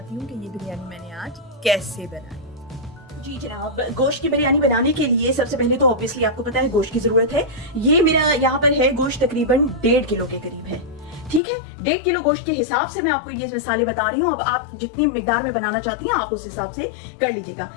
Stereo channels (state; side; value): drops out; right; at 11.4 s